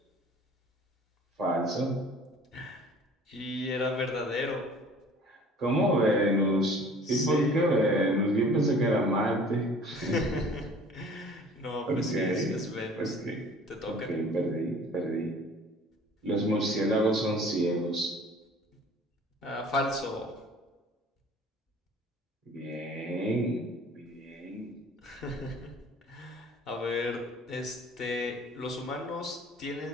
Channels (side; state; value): both; normal; correlation 0.49